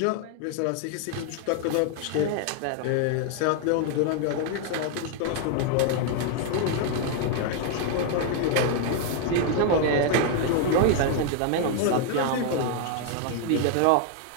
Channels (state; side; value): different; both; correlation 0.00